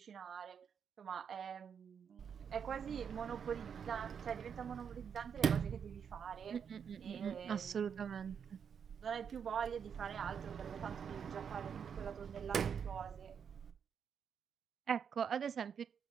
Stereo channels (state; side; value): quieter; left; 7.3 dB